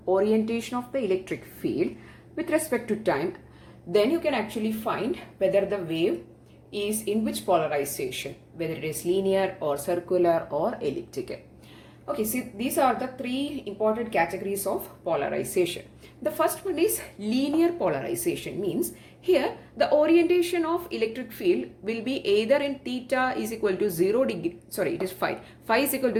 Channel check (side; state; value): both; identical; correlation 1.00